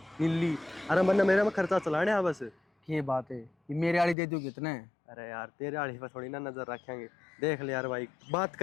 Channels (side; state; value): right; drops out; at 4.2 s